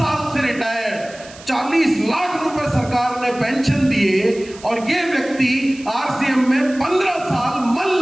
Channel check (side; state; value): right; noise; hiss, 20 dB below the sound